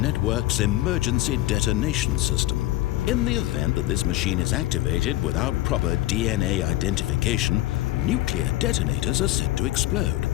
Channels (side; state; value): right; quieter; 16.4 dB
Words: emergency detonation system. In the event that this machine is activated without proper DNA identification, nuclear detonators are said to explode,